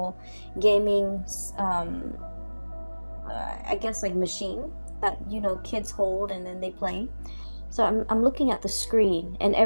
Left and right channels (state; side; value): inverted; both; correlation -1.00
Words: gaming, I guess like machine that, kids hold and then they play. So I'm looking at the screen and